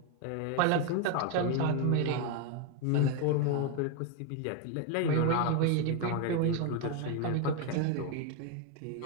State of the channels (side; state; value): both; different; correlation 0.01